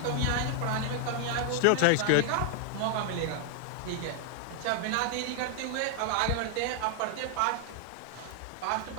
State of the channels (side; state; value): both; different; correlation 0.00